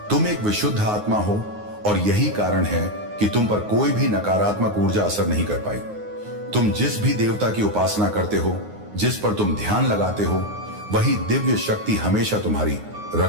तुम एक विशुद्ध आत्मा हो और यही कारण है कि तुम पर कोई भी नकारात्मक ऊर्जा असर नहीं कर पाई। तुम जिस भी देवता की उपासना करते हो, जिस पर तुम ध्यान लगाते हो, वही दिव्य शक्ति हमेशा तुम्हारी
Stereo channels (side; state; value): left; late; 9.6 ms